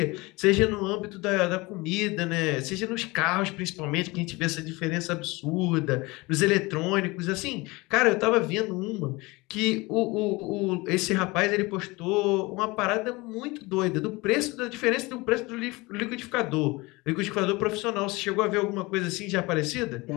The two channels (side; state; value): right; quieter; 23.4 dB